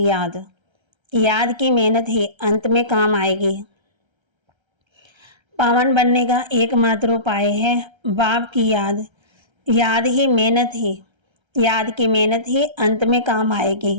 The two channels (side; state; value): left; late; 1.3 ms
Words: याद। याद की मेहनत ही अंत में काम आएगी। पावन बनने का एकमात्र उपाय है बाप की याद। याद की मेहनत ही अंत में काम आएगी।